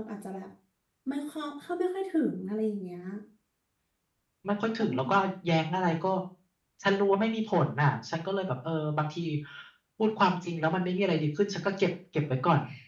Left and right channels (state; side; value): identical; both; correlation 1.00